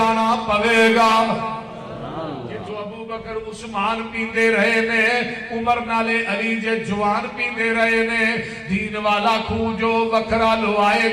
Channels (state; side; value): identical; both; correlation 1.00